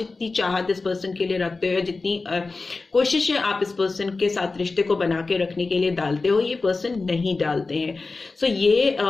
चाहत इस पर्सन के लिए रखते हो, जितनी कोशिशें आप इस पर्सन के साथ रिश्ते को बना के रखने के लिए डालते हो, ये पर्सन नहीं डालते हैं। सो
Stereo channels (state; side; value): quieter; right; 3.8 dB